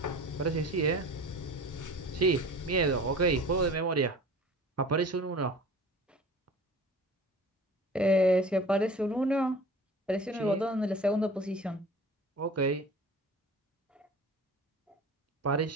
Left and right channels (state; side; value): normal; both; correlation 0.41